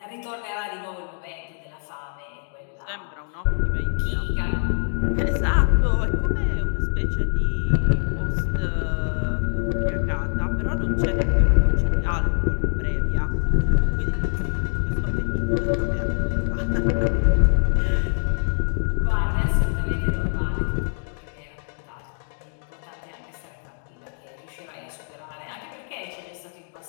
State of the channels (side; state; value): right; silent; digital silence